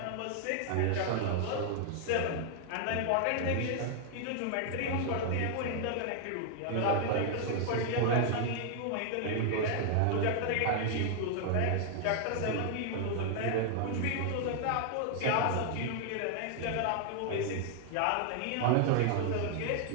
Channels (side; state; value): both; different; correlation 0.00